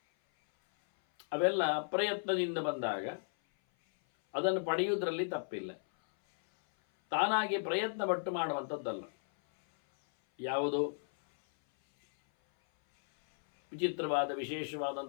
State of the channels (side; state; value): right; silent; 55 dB below the other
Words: ಅವೆಲ್ಲ ಪ್ರಯತ್ನದಿಂದ ಬಂದಾಗ ಅದನ್ನು ಪಡೆಯುವುದರಲ್ಲಿ ತಪ್ಪಿಲ್ಲ. ತಾನಾಗಿ ಪ್ರಯತ್ನ ಪಟ್ಟು ಮಾಡುವಂಥದ್ದಲ್ಲ. ಯಾವುದೋ ವಿಚಿತ್ರವಾದ